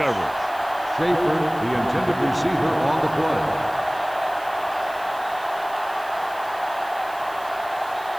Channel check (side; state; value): right; noise; hiss, 21 dB below the sound